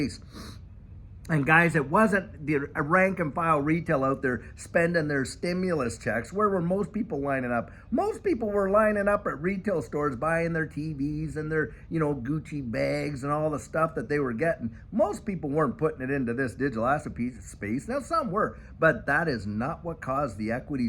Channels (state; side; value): identical; both; correlation 1.00